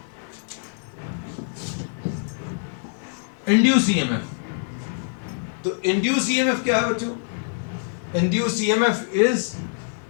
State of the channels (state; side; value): silent; right; digital silence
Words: इंड्यूस ईएमएफ। तो इंड्यूस ईएमएफ क्या है बच्चों? Induce EMF is